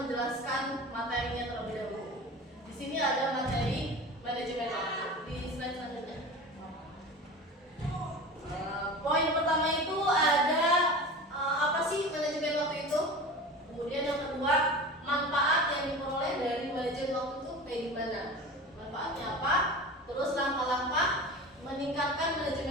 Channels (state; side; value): normal; both; correlation 0.33